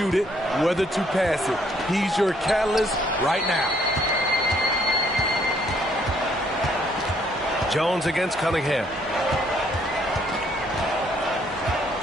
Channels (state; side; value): normal; both; correlation 0.66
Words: it, whether to pass it. He's your catalyst right now. Jones against Cunningham.